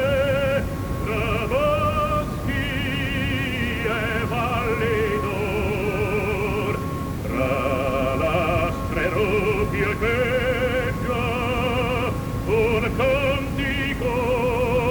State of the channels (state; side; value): identical; both; correlation 1.00